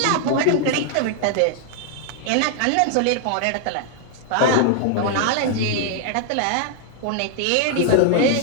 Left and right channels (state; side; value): different; both; correlation 0.00